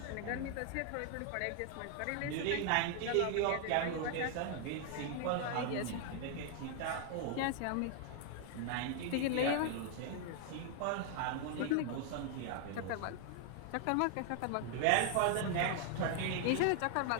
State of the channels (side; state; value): both; different; correlation 0.00